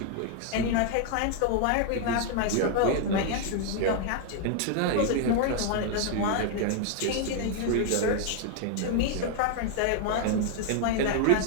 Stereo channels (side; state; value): both; different; correlation 0.00